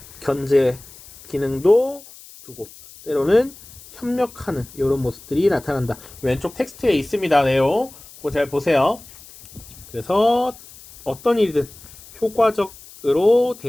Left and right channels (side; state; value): left; noise; hiss, 20 dB below the sound